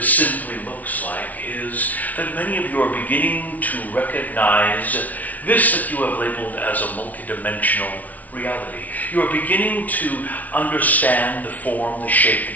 simply looks like is that many of you are beginning to recognize this that you have labeled as a multidimensional reality. You are beginning to understand the form, the shape,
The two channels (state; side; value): late; right; 0.074 ms